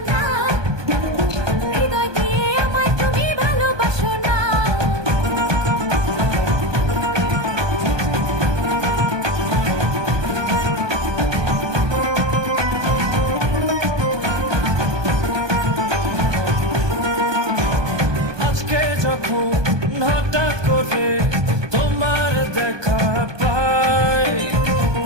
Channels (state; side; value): late; left; 1.2 ms